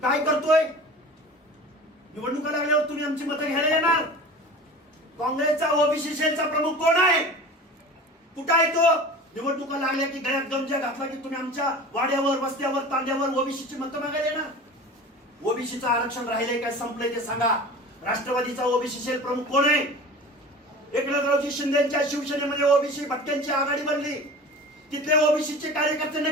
काय करतोय? निवडणुका लागल्यावर तुम्ही आमची मतं घ्यायला येणार? काँग्रेसचा ओबीसी सेलचा प्रमुख कोण आहे? कुठं आहे तो? निवडणुका लागल्या की गळ्यात गमजा घातला की तुम्ही आमच्या वाड्यावर, वस्त्यावर, तांड्यावर ओबीसीची मतं मागायला येणार? ओबीसीचं आरक्षण राहिलंय काय, संपलंय ते सांगा. राष्ट्रवादीचा ओबीसी सेल प्रमुख कोण आहे? एकनाथरावजी शिंदेच्या शिवसेनेमध्ये ओबीसी भटक्यांची आघाडी बनली. तिथले ओबीसीचे कार्यकर्ते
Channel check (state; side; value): normal; both; correlation 0.37